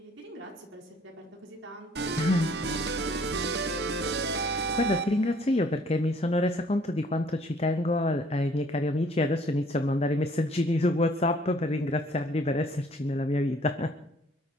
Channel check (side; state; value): both; normal; correlation 0.59